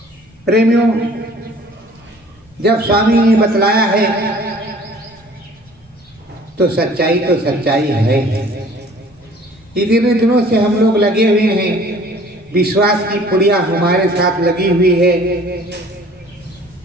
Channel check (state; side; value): normal; both; correlation 0.51